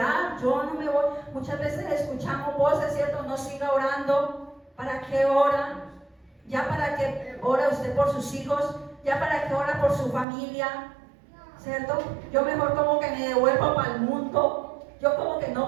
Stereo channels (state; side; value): drops out; left; at 10.2 s